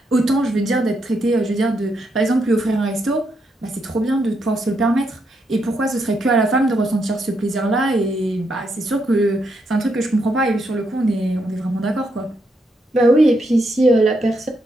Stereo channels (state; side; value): normal; both; correlation 0.79